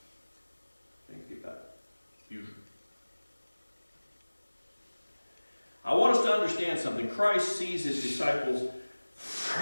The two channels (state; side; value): inverted; both; correlation -1.00